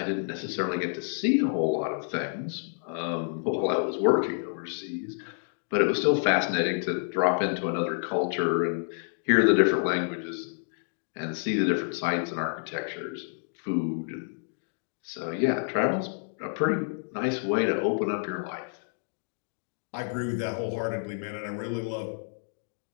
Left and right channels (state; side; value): silent; right; digital silence